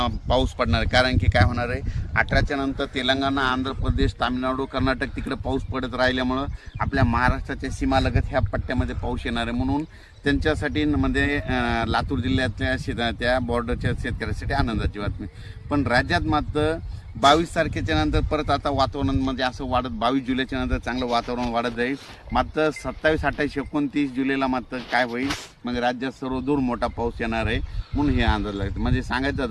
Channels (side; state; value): both; identical; correlation 1.00